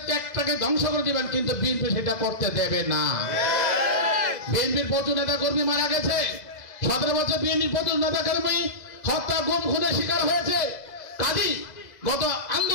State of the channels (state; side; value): late; right; 2.0 ms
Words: ত্যাগটাকে ধ্বংস করে দিবেন, কিন্তু বিএনপি সেটা করতে দেবে না। বিএনপির প্রচুর নেতা কর্মী মারা গেছে, 17 বছর বিএনপির প্রচুর নেতা কর্মী হত্যা, গুম, খুনের শিকার হয়েছে। কাজী গত